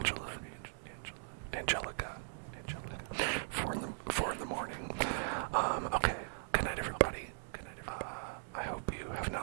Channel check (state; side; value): silent; left; digital silence